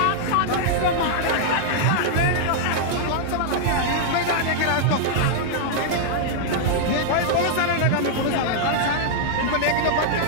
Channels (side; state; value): both; different; correlation -0.01